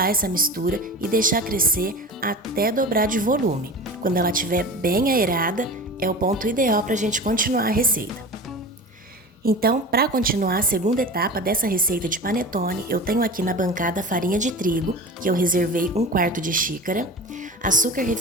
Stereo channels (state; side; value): normal; both; correlation 0.33